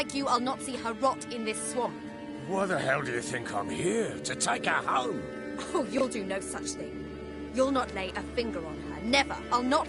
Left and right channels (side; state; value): both; identical; correlation 1.00